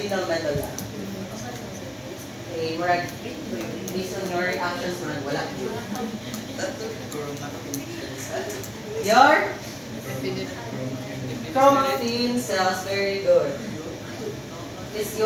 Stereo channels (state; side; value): identical; both; correlation 1.00